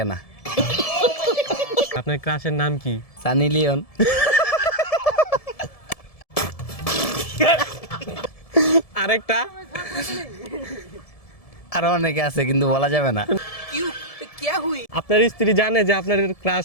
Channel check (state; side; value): late; right; 1.7 ms